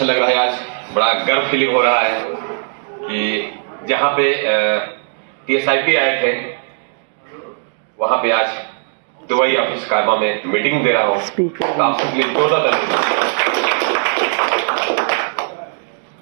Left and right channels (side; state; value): left; silent; 68 dB below the other